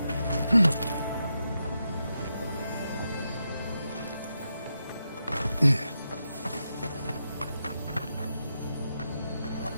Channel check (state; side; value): inverted; both; correlation -0.86